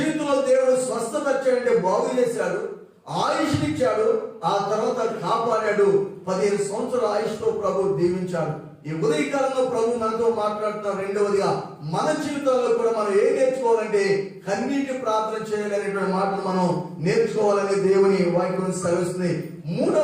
దేవుడు స్వస్థపరిచాడంటే, బాగు చేశాడు, ఆయుష్నిచ్చాడు, ఆ తర్వాత కాపాడాడు. 15 సంవత్సరాల ఆయుష్తో ప్రభు దీవించాడు. ఈ ఉదయకాలంలో ప్రభు మనతో మాట్లాడుతున్నారు. రెండవదిగా మన జీవితాల్లో కూడా మనం ఏం నేర్చుకోవాలంటే కన్నీటి ప్రార్థన చేయాలనేటువంటి మాటలు మనం నేర్చుకోవాలని దేవుని వాక్యం సెలవుస్తుంది.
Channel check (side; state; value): both; identical; correlation 1.00